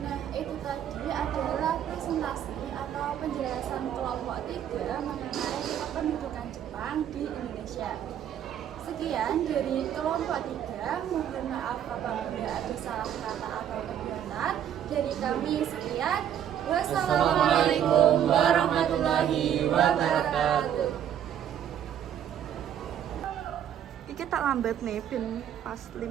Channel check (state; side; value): quieter; left; 9.7 dB